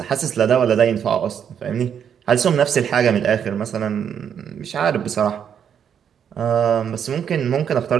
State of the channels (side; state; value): left; quieter; 8.2 dB